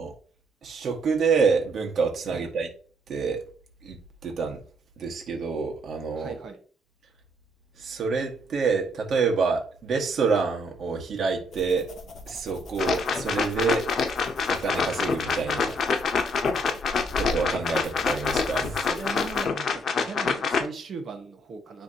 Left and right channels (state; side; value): normal; both; correlation 0.69